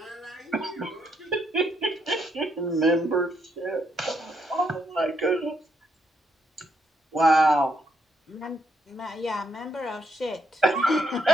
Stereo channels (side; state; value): both; normal; correlation 0.75